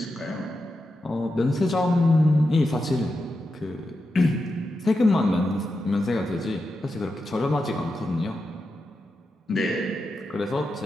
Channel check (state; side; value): normal; both; correlation 0.88